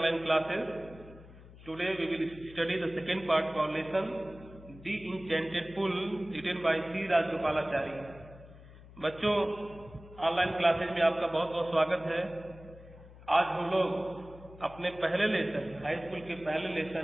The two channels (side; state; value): left; noise; hum, 19 dB below the sound